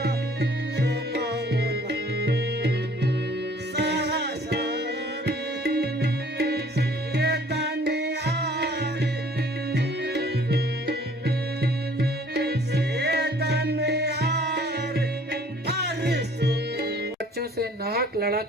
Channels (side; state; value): both; normal; correlation 0.55